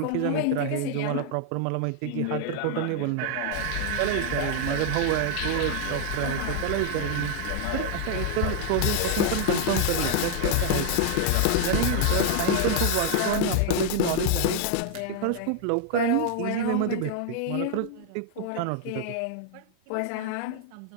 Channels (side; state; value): both; different; correlation 0.00